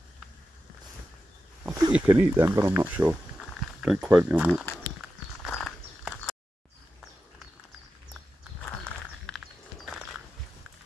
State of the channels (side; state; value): both; normal; correlation 0.90